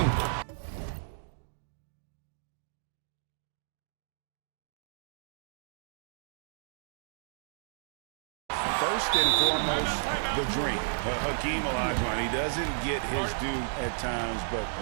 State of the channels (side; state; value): left; silent; digital silence